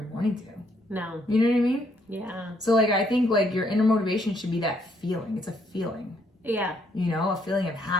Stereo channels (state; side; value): normal; both; correlation 0.71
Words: morning to. No. You know what I mean? Yeah. So I think your inner motivation should be that feeling. It's a feeling. Yeah. A feeling of